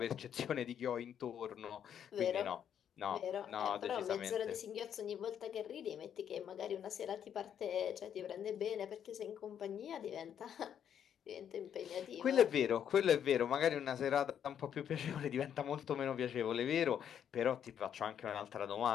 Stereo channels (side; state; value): right; quieter; 9.0 dB